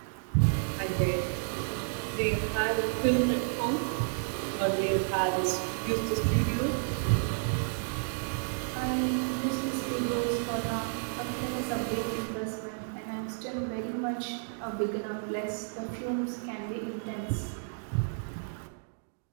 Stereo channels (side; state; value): left; silent; digital silence